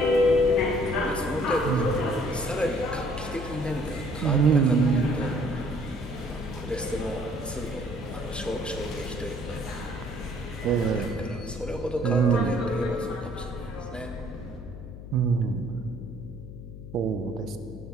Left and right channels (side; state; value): left; noise; hum, 12 dB below the sound